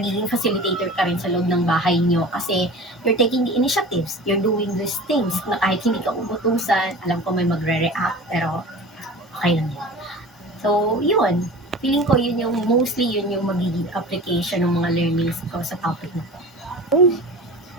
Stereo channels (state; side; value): normal; both; correlation 0.37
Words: facilitator ka rin sa loob ng bahay nyo kasi you're taking the initiatives, you're doing these things na kahit hindi ka utusan, alam ko may magre-react, pero okay lang yun. So, yun. Feeling ko yun yung magiging application ng mga learnings ko sa topic na to.